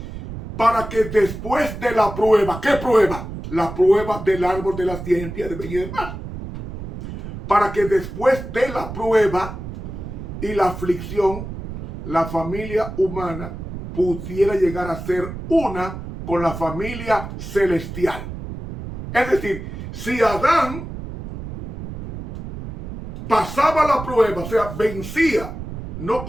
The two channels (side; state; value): right; noise; rumble, 9 dB below the sound